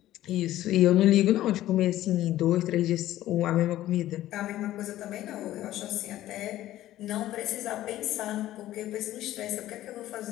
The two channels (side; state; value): right; quieter; 14.2 dB